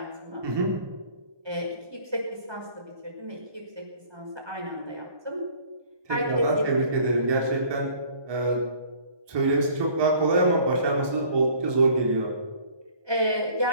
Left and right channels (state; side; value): late; left; 1.2 ms